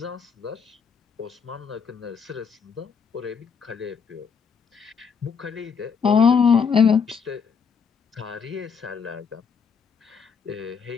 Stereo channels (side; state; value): right; quieter; 6.2 dB